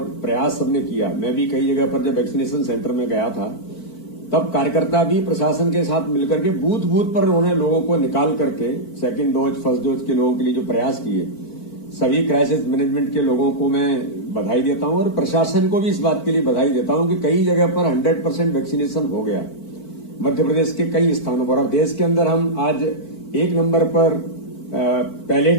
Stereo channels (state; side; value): late; right; 4.5 ms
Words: प्रयास सबने किया, मैं भी कई जगह पर जब वैक्सीनेशन सेंटर में गया था तब कार्यकर्ता भी प्रशासन के साथ मिलकर के बूथ बूथ पर उन्होंने लोगों को निकाल करके सेकंड डोज, फर्स्ट डोज के लोगों के लिए जो प्रयास किए, सभी क्राइसिस मैनेजमेंट के लोगों को मैं बधाई देता हूं और प्रशासन को भी इस बात के लिए बधाई देता हूं कि कई जगह पर 100% वैक्सीनेशन हो गया मध्य प्रदेश के कई स्थानों पर। और देश के अंदर हम आज 1 नंबर पर पहले